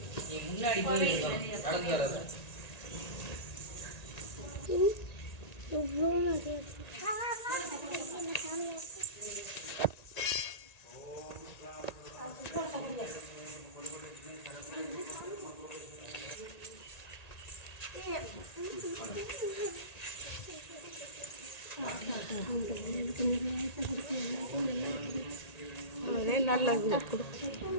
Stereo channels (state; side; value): late; right; 1.9 ms